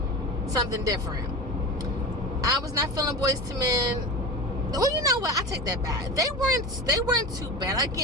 something different. I was not feeling Boys to Men. Well, you know what? I take that back. They weren't too bad.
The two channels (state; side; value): normal; both; correlation 0.28